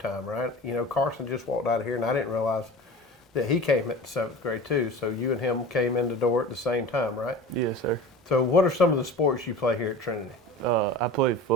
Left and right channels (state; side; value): normal; both; correlation 0.36